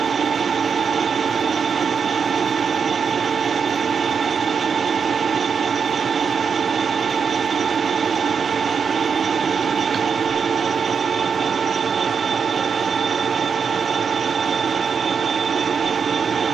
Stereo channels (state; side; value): quieter; left; 6.2 dB